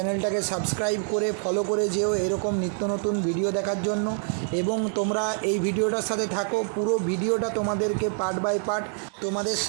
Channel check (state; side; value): silent; left; 57 dB below the other